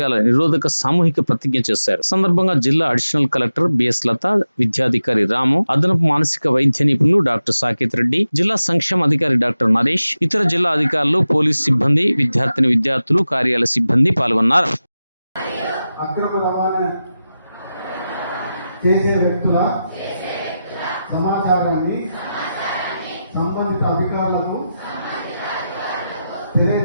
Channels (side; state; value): both; inverted; correlation -0.92